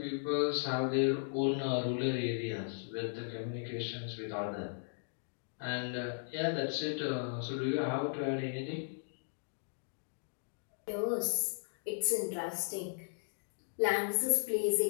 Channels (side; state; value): right; silent; digital silence